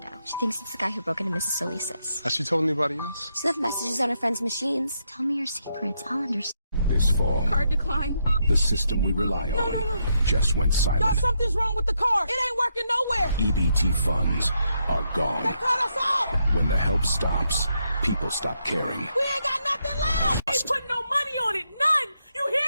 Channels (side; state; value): both; inverted; correlation -0.79